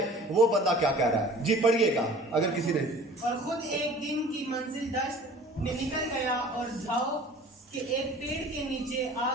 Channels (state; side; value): normal; both; correlation 0.46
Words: वो बंदा क्या कह रहा है? जी पढ़िएगा अगर किसी ने। और खुद एक दिन की मंजिल दश्त में निकल गया और झाओ के एक पेड़ के नीचे